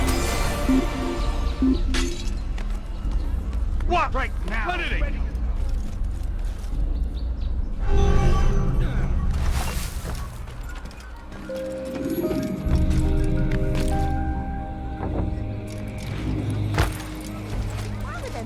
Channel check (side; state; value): both; identical; correlation 1.00